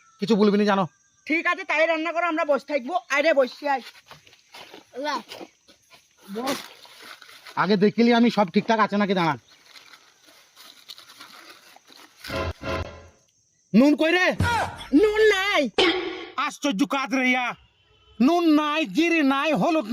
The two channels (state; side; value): identical; both; correlation 1.00